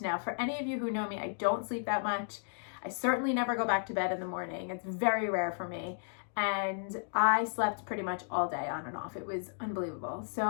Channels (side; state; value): right; silent; digital silence